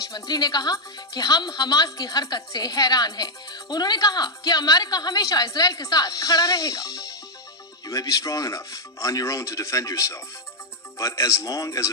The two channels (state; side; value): normal; both; correlation 0.00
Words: मंत्री ने कहा कि हम हमास की हरकत से हैरान हैं। उन्होंने कहा कि अमेरिका हमेशा इजराइल के साथ खड़ा रहेगा। You may be strong enough on your own to defend yourself, but as long as